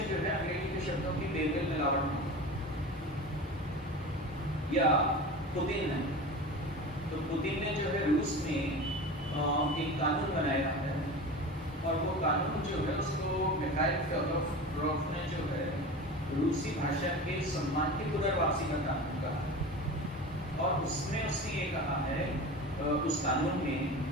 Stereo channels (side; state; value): both; normal; correlation 0.32